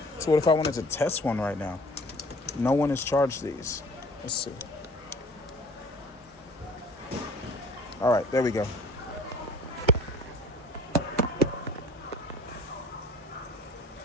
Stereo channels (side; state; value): both; normal; correlation 0.49